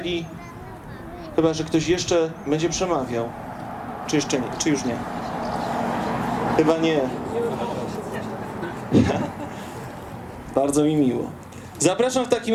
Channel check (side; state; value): both; identical; correlation 1.00